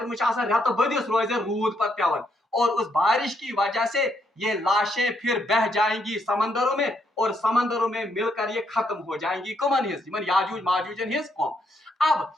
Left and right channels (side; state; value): both; normal; correlation 0.75